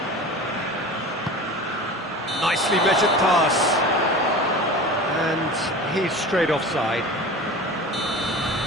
Nicely measured pass. And he's straight offside.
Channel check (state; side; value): normal; both; correlation 0.35